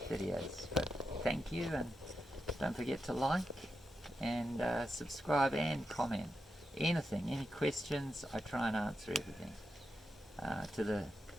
videos. But thank you, and don't forget to like and subscribe and comment. Anything, any questions, I try and answer everything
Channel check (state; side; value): normal; both; correlation 0.87